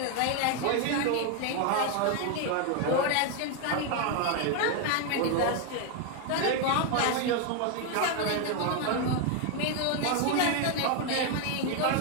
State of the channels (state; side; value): different; both; correlation 0.01